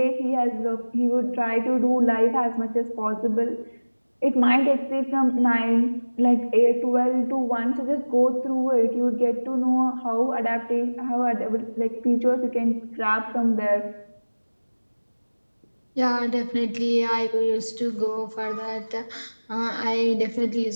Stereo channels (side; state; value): both; inverted; correlation -1.00